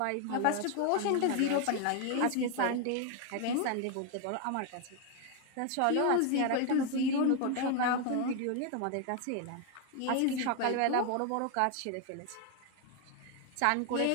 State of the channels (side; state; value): both; different; correlation 0.01